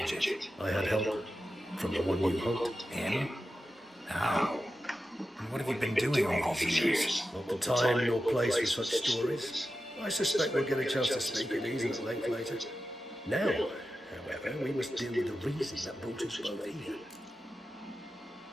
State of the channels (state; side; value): normal; both; correlation 0.91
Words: it? I had help from the one you hunt. Him? How? And what have you been doing all these years? Not the time nor place for such stories. I suspect we'll get a chance to speak at ease and at length later. Now, however, we must deal with the reason that brought us both here.